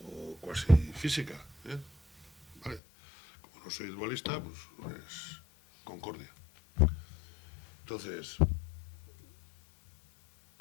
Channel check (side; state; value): right; drops out; at 2.8 s